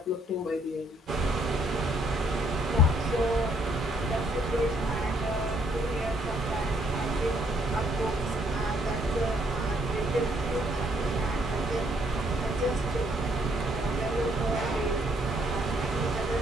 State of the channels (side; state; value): both; normal; correlation 0.69